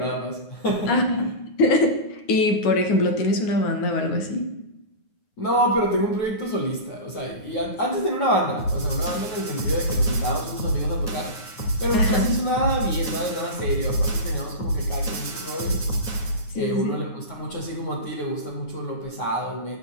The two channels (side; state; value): right; late; 9.6 ms